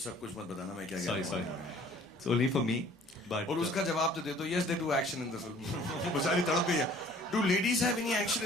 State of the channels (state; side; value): normal; both; correlation 0.53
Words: सब कुछ मत बताना मैं क्या कह रहा हूँ. Sorry. It's only for me. But और उसका जवाब तो दे दो. Yes, they do action in the film. बेचारी तड़प गई है. Do ladies have any action?